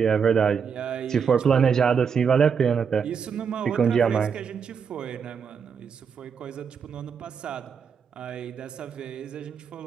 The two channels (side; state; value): left; quieter; 6.6 dB